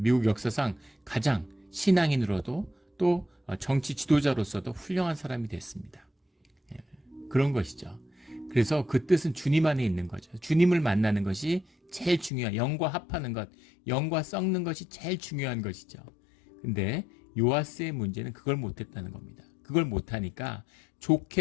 역사상 가장 신앙인으로도 또 정치 지도자로서도 훌륭한 사람이 됐습니다. 그런 것이죠. 그래서 그 뜻은 주님 안에 있는 거죠. 주님을 만나는 것이 제일 중요한, 영과 합하는 것, 영과 썩는 것이 제일 중요한 것이죠. 근데 요아스의 문제는 그걸 못했다는 겁니다. 그걸 못하니까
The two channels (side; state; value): right; drops out; at 12.3 s